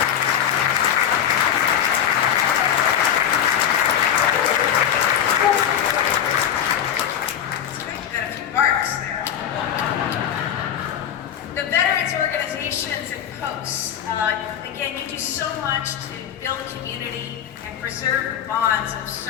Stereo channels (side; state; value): right; quieter; 9.4 dB